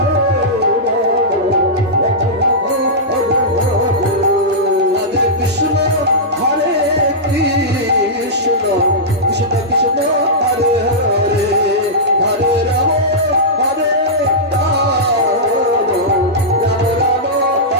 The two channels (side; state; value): both; normal; correlation -0.13